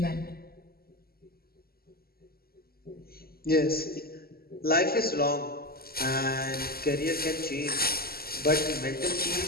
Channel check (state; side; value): late; right; 0.45 ms